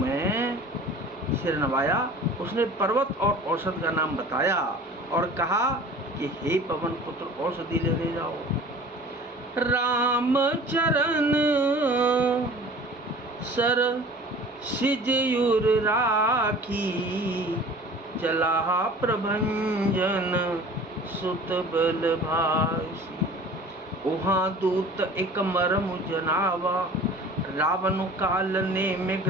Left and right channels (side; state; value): both; normal; correlation 0.44